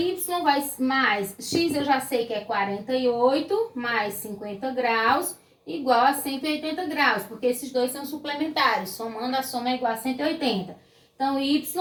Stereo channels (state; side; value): identical; both; correlation 1.00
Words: vai mais x, eu já sei que é 48, mais 50 graus, igual a 180 graus, porque esses dois são suplementares, somando a soma é igual a 180. Então, y